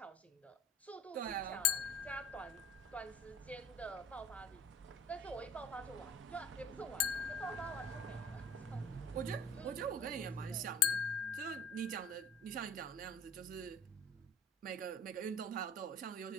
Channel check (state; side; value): normal; both; correlation 0.46